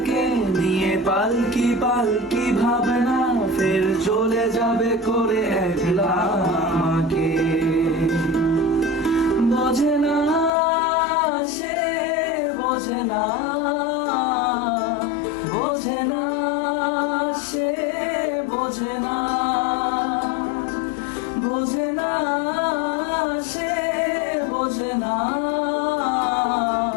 নিয়ে পালকি পালকি ভাবনা, ফের চলে যাবে করে একলা আমাকে। বোঝে না সে, বোঝে না, বোঝে না সে, বোঝে না, বোঝে না সে, বোঝে না,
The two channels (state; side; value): drops out; right; at 10.5 s